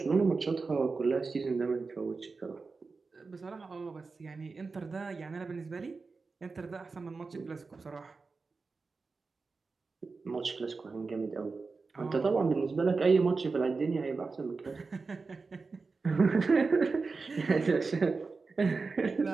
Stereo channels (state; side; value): quieter; left; 4.3 dB